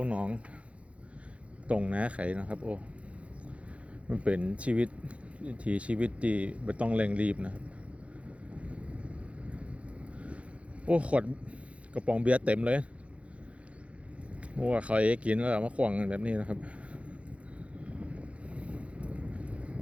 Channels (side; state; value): left; late; 0.063 ms